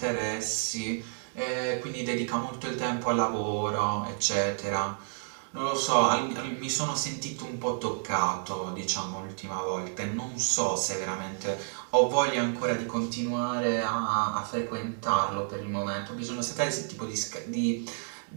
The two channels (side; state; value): left; silent; 58 dB below the other